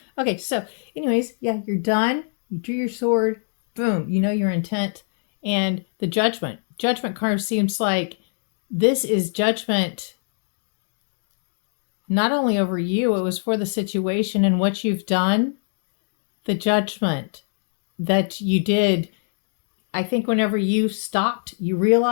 Okay, so anyways, yeah, you're done. You drew your sword. Boom. You know your intent. And the Judgment. Judgment card seems like this is judgment not only over you, it was for the situation and what you've done. The judgment that you did, I think whenever you stopped, you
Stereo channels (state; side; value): silent; right; digital silence